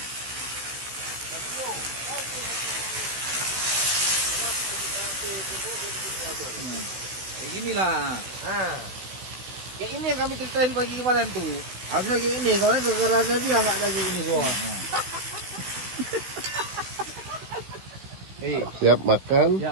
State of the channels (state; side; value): late; left; 16 ms